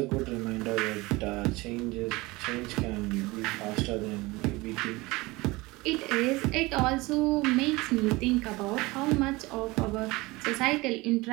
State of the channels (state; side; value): quieter; left; 22.2 dB